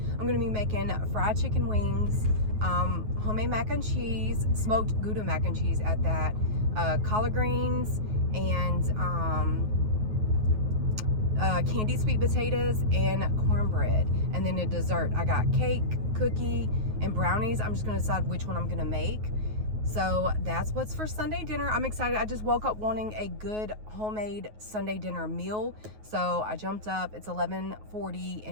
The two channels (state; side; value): late; left; 9.4 ms